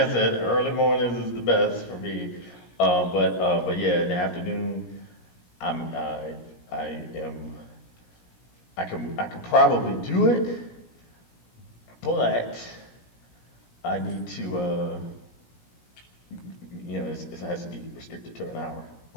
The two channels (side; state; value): right; late; 17 ms